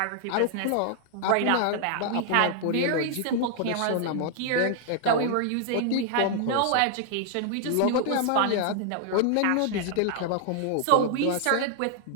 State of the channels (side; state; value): both; different; correlation 0.00